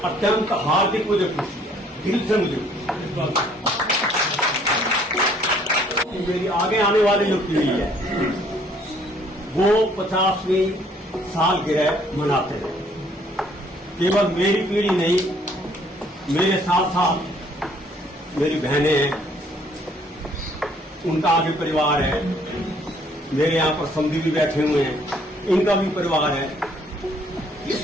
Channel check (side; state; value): both; normal; correlation 0.62